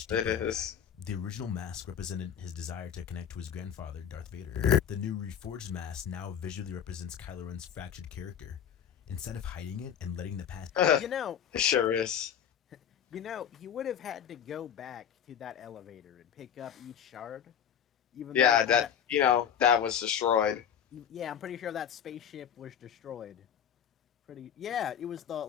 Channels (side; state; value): right; quieter; 8.7 dB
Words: deeper. It is. The original mask represented his desire to connect to his grandfather, Darth Vader. The new reforged mask now visually represents Kylo Ren's fractured character. Instead of hiding it and letting the past... You know, It sure is. he would have had to go back to that elevator and pick up each shard. Even Yeah, though that was destroyed. yeah, I'm pretty sure that spaceship was destroyed. Yeah, it was